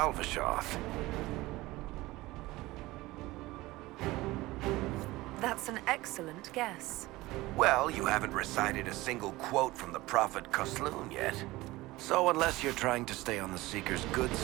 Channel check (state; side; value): quieter; left; 19.3 dB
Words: That's an excellent guess. Well, you haven't recited a single quote from the Prophet Kosloon yet. So unless you're trying to stay on the Seeker's good